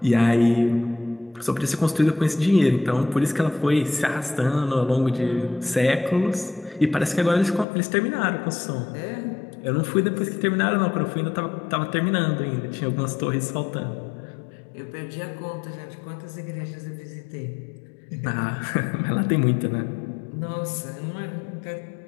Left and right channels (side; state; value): right; drops out; at 7.7 s